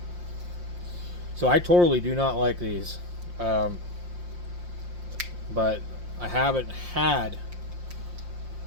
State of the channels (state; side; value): late; left; 5.7 ms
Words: So I totally do not like these. But I haven't had